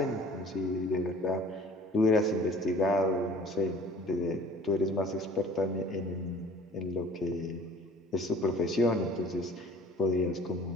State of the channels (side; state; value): both; normal; correlation 0.50